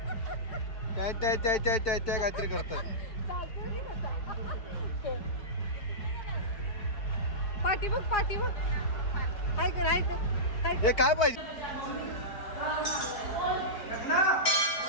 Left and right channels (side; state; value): right; late; 4.5 ms